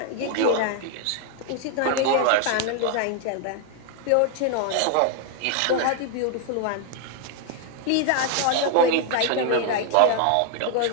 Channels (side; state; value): both; different; correlation 0.00